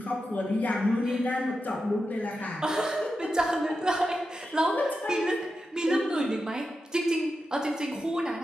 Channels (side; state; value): both; normal; correlation 0.89